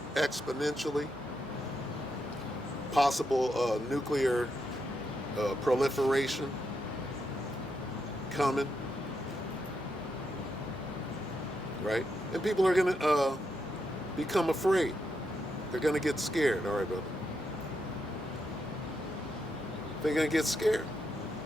exponentially. Possible nuclear proliferation coming. Right? And people are going to become afraid. They're going to get scared. All right, brother. They're going to get scared.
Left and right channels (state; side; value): normal; both; correlation 0.82